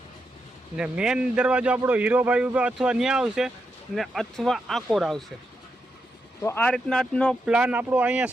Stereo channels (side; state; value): both; normal; correlation 0.84